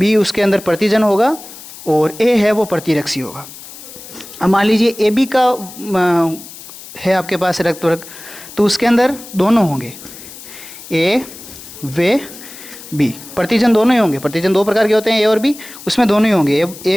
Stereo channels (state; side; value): noise; left; hiss, 16 dB below the sound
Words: उसके अंदर प्रतिजन होगा और ए है वो प्रतिरक्षी होगा। अब मान लीजिए ए बी का है आपके पास रक्त वर्ग, तो उसके अंदर दोनों होंगे, ए व बी, प्रतिजन दोनों ही होंगे। प्रतिजन 2 प्रकार के होते हैं, ए और बी, उसमें दोनों ही होंगे।